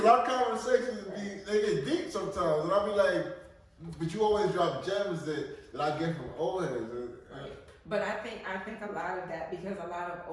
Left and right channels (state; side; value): identical; both; correlation 1.00